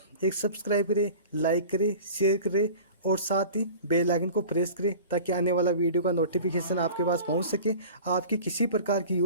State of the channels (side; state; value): both; inverted; correlation -0.40